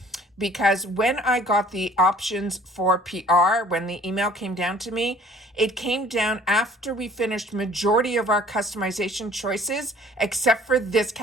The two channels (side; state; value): both; normal; correlation 0.53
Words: because when I got the options for PR, when the email came down to me, it came down after we finished majority of our customization choices, except for this